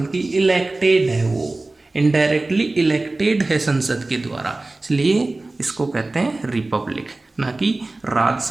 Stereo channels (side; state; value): left; quieter; 3.1 dB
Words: इलेक्टेड है, वो इनडायरेक्टली इलेक्टेड है संसद के द्वारा। इसलिए इसको कहते हैं रिपब्लिक, ना कि